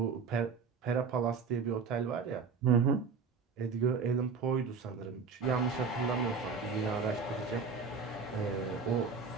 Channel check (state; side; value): quieter; left; 5.2 dB